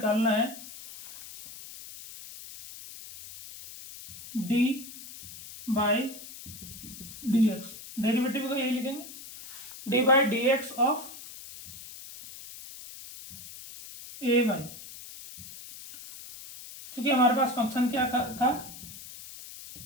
है d by d x, derivative का यही लिखेंगे, d by d x of a y, क्योंकि हमारे पास फंक्शन क्या था,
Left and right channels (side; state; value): left; noise; hiss, 14 dB below the sound